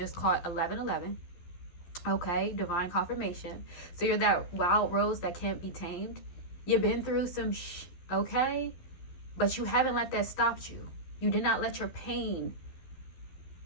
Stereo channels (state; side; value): late; right; 12 ms